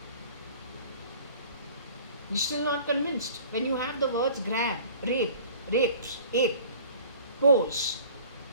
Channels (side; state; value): both; inverted; correlation -0.47